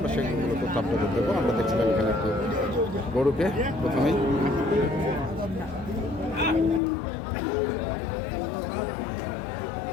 সেগুলো তথ্য আপনাদের দেবো। আমরা দেখছিলাম এখানে একটু গরুকে প্রথমেই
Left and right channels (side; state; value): right; drops out; at 6.8 s